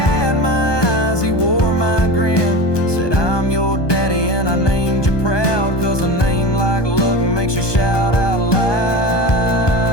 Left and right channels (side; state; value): right; late; 1.2 ms